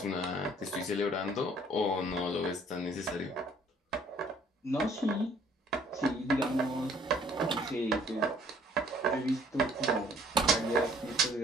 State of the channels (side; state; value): both; normal; correlation 0.59